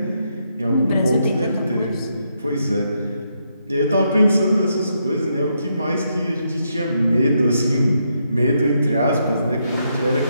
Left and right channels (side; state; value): both; inverted; correlation -0.79